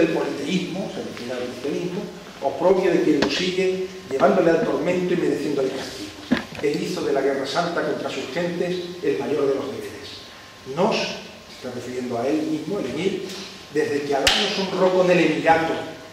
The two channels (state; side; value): identical; both; correlation 1.00